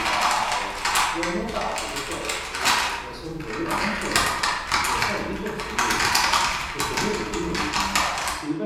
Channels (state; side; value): identical; both; correlation 1.00